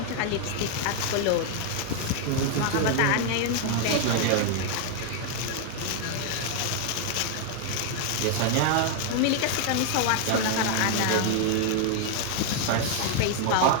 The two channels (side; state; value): both; different; correlation 0.00